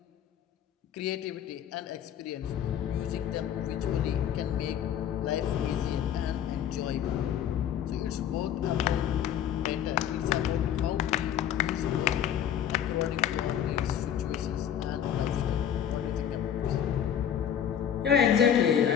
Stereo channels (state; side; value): quieter; right; 9.5 dB